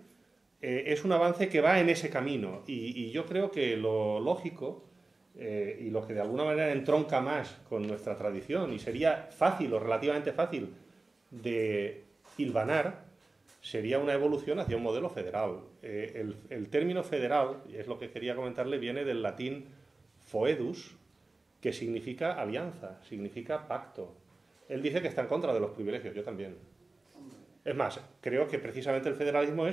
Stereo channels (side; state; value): left; quieter; 3.2 dB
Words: es un avance que va en ese camino, y yo creo que lo lógico y lo que de alguna manera entronca más con nuestra tradición y sería fácil o relativamente fácil de hilvanar sería una evolución hacia un modelo federal. El término federal, y es lo que quería comentarle, viene del latín foedus, que significa alianza, significa pacto. Él dice que está en contra de los privilegios, yo también. Es más, creo que precisamente el federalismo